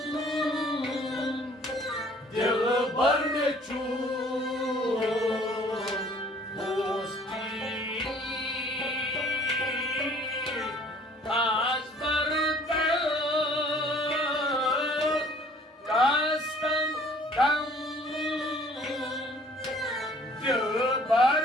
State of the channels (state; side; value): normal; both; correlation 0.55